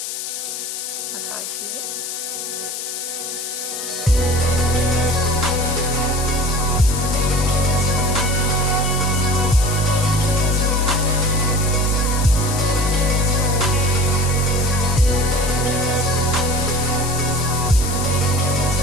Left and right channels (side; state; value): left; noise; hiss, 6 dB below the sound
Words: That's how I see it.